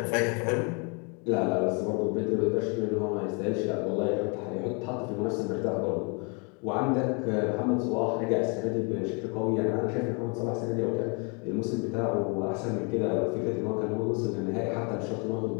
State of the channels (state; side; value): quieter; right; 34.3 dB